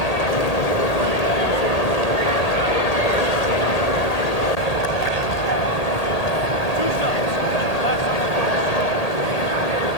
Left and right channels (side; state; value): right; late; 1.8 ms